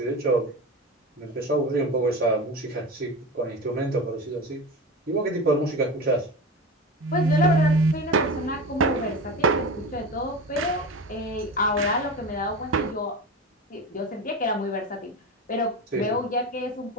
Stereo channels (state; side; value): normal; both; correlation 0.27